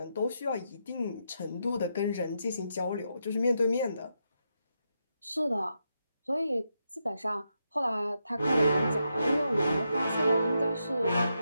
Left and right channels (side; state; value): both; inverted; correlation -0.83